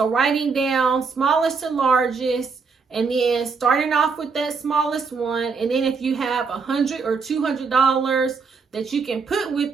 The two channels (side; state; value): left; quieter; 5.0 dB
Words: writing down smallest to largest, and then starting off with that smallest one. And then if you have $100 or $200 that you can put